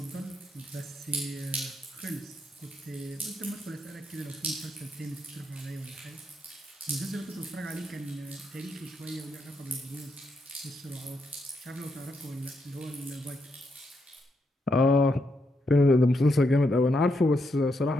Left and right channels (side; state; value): both; normal; correlation 0.80